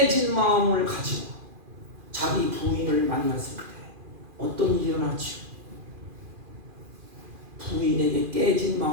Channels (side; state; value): left; late; 2.4 ms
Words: 마음을 가지고 자기 부인을 만났을 때 어떤 일이 일어났죠? 부인에게 깨진